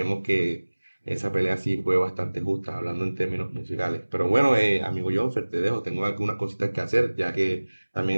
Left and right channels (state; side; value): inverted; both; correlation -1.00